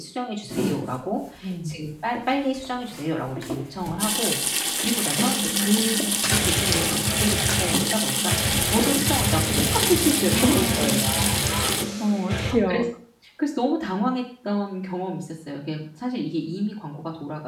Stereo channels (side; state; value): both; identical; correlation 1.00